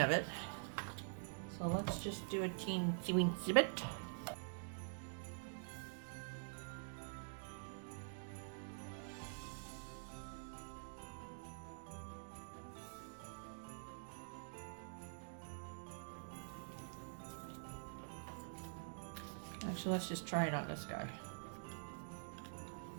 of it, so let's just do a teensy bit. Actually, let's just try it on this guy.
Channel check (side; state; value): left; silent; digital silence